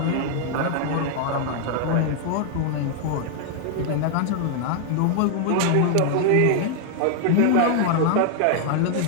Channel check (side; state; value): both; different; correlation 0.00